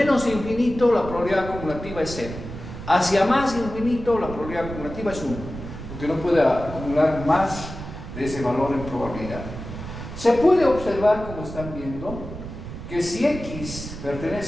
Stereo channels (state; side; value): noise; right; rumble, 10 dB below the sound